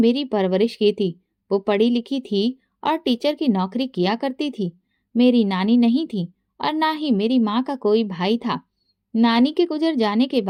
परवरिश की थी। वो पढ़ी लिखी थी और टीचर की नौकरी किया करती थी। मेरी नानी नहीं थी और ना ही मेरी माँ का कोई भाई था। नानी के गुजर जाने के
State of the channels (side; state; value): both; identical; correlation 1.00